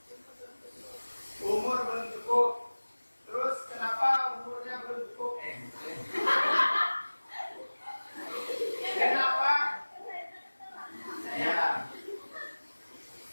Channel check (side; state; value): both; inverted; correlation -1.00